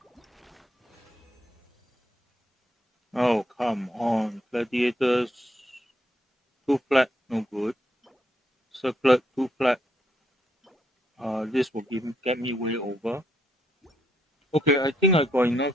Oh, come on. Gladiators, too flat, no good. Circlet, too flat. This will get me way over. Okay, I think I got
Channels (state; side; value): normal; both; correlation 0.75